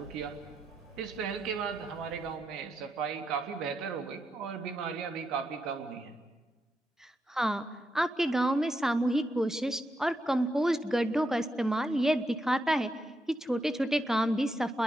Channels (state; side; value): normal; both; correlation 0.83